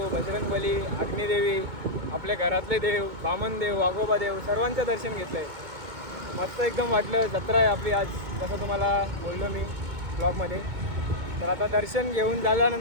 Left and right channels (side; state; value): left; late; 2.2 ms